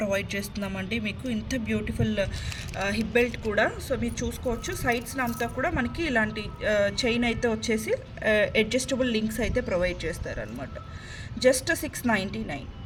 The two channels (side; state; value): both; identical; correlation 1.00